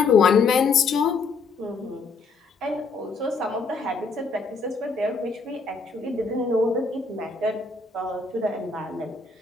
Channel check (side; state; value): right; quieter; 4.3 dB